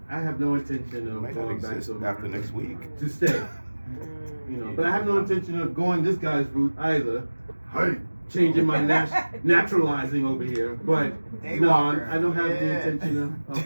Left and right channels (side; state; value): both; inverted; correlation -1.00